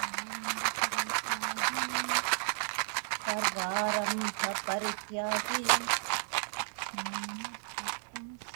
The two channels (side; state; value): left; silent; digital silence